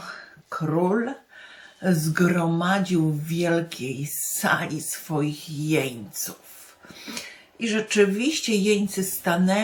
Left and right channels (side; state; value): both; identical; correlation 1.00